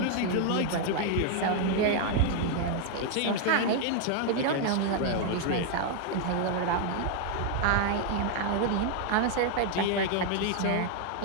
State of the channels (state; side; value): different; both; correlation 0.00